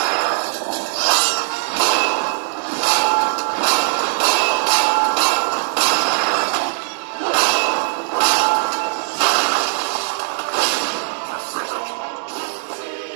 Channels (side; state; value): left; silent; digital silence